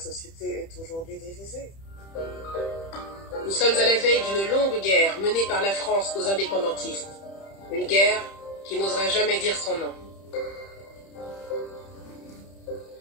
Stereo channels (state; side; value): late; right; 30 ms